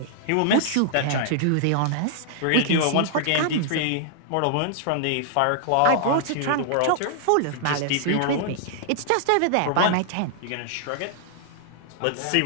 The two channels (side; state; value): both; different; correlation -0.01